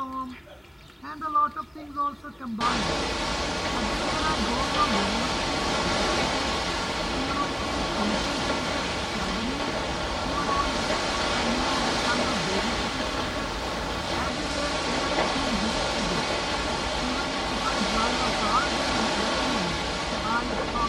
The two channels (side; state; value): both; identical; correlation 1.00